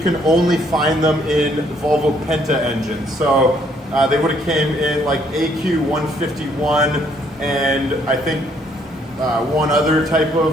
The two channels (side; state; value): both; normal; correlation 0.67